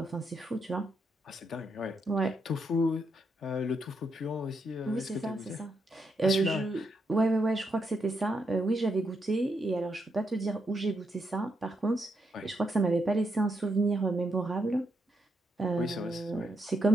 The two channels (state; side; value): normal; both; correlation 0.80